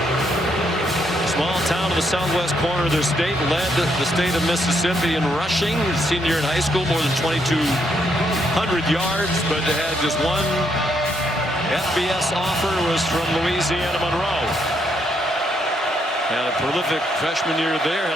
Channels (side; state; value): both; normal; correlation 0.75